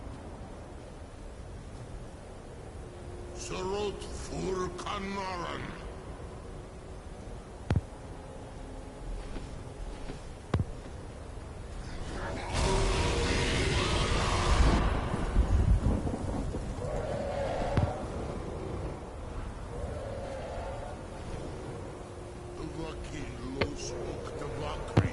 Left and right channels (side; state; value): both; identical; correlation 1.00